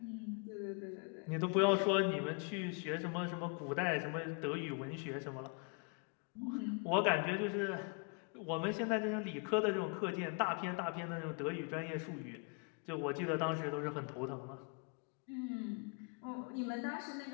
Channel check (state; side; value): quieter; right; 36.8 dB